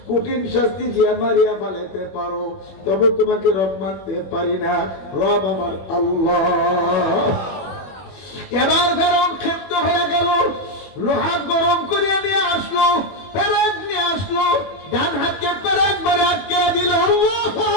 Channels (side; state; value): right; late; 21 ms